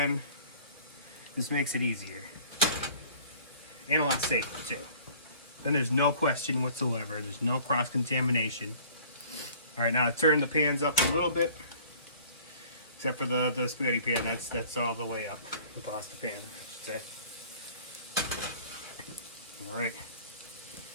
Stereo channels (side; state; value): both; inverted; correlation -0.51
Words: This makes it easier and a lot safer too. Then there's no question whatsoever. There's no cross-contamination. All right, now I turn the pans up a little bit, except for the spaghetti pan. That's all the way up. The pasta pan, I should say. All right.